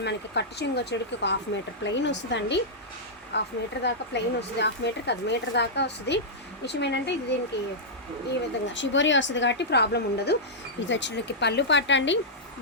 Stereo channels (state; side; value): normal; both; correlation -0.10